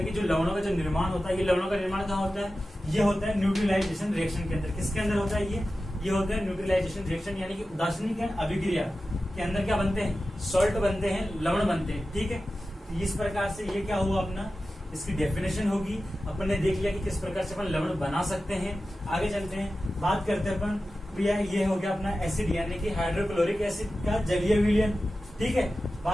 कि जो लवणों का जो निर्माण होता है, ये लवणों का निर्माण कहाँ होता है, ये होता है न्यूट्रलाइजेशन रिएक्शन के अंदर। किसके अंदर होता है ये होता है न्यूट्रलाइजेशन रिएक्शन, यानी कि उदासीनीकरण अभिक्रिया के अंदर क्या बनते हैं, सॉल्ट बनते हैं, लवण बनते हैं। ठीक है, इस प्रकार से ये क्या हुआ अपना, इसकी डेफिनेशन होगी। अपन ने देख लिया कि किस प्रकार से अपन लवण बना सकते हैं। आगे चलते हैं, बात करते हैं अपन भैया, ये हो गया अपना एसिड यानी कि हाइड्रोक्लोरिक एसिड का जलीय विलयन। ठीक है,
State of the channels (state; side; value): normal; both; correlation 0.94